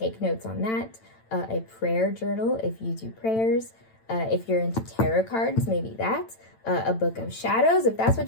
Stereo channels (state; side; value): late; right; 9.0 ms